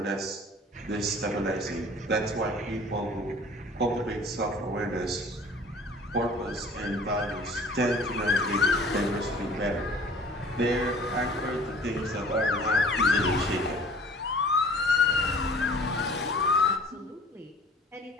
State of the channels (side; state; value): both; normal; correlation 0.48